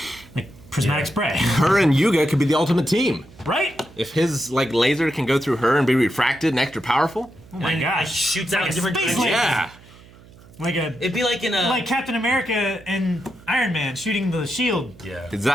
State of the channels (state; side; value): noise; right; hum, 23 dB below the sound